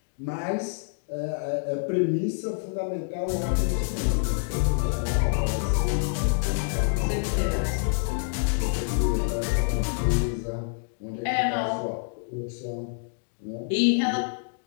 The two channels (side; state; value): right; silent; digital silence